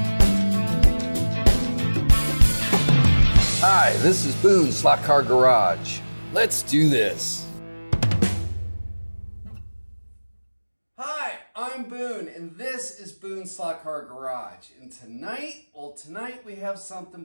this is Boone Slot Car Garage. Let's do this. Hi, I'm Boone, and this is Boone Slot Car Garage. And tonight we have something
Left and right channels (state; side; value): inverted; both; correlation -1.00